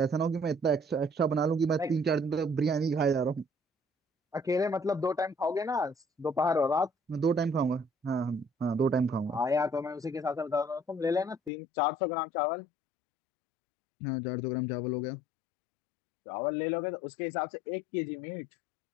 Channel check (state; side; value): drops out; right; at 11.5 s